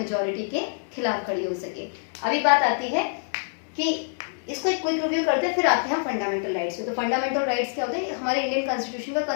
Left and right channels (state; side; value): silent; right; digital silence